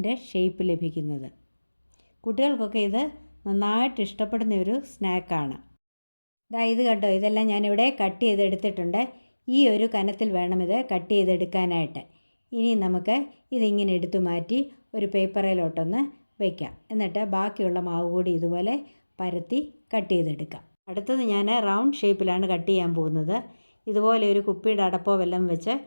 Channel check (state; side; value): inverted; both; correlation -1.00